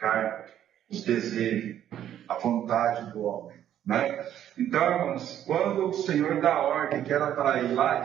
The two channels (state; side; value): quieter; left; 10.9 dB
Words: os desejos, a vontade do homem. Né? Então, irmãos, quando o Senhor dá ordem que era para ir lá